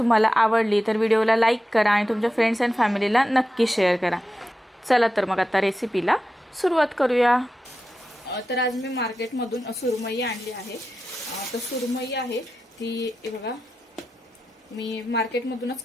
आवडली तर व्हिडिओला लाईक करा आणि तुमच्या फ्रेंड्स अँड फॅमिलीला नक्की शेअर करा। चला तर मग आता रेसिपीला सुरुवात करूया। तर आज मी मार्केटमधून सुरमई आणली आहे। तर सुरमई आहे ती बघा मी मार्केटमधूनच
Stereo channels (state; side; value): normal; both; correlation 0.91